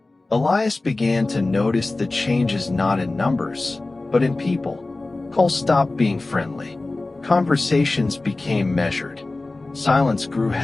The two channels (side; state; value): right; quieter; 3.1 dB